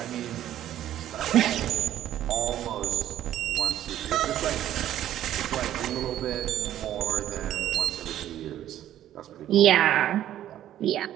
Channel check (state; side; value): quieter; left; 12.1 dB